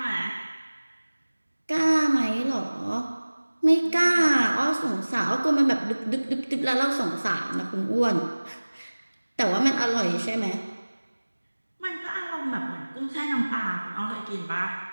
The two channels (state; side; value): inverted; both; correlation -1.00